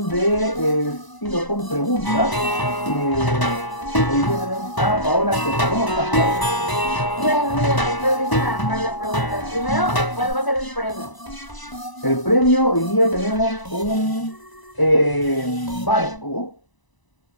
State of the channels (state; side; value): late; right; 1.0 ms